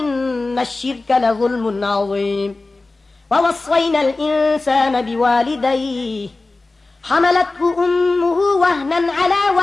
الشرك لظلم عظيم ووصينا الإنسان بوالديه حملته أمه وهنا على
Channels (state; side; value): quieter; right; 3.3 dB